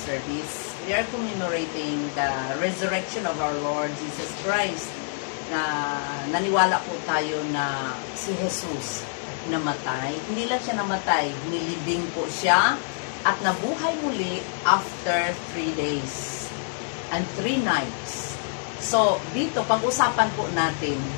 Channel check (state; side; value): silent; right; digital silence